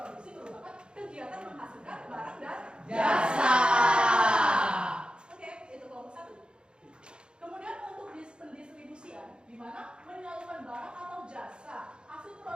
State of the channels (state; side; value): late; left; 0.051 ms